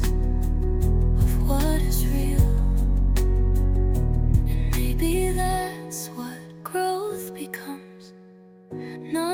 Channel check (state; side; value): identical; both; correlation 1.00